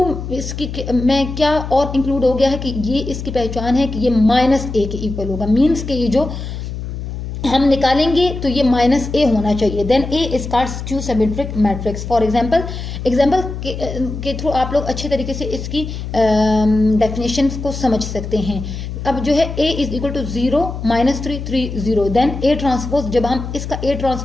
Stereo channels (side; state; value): left; noise; hum, 7 dB below the sound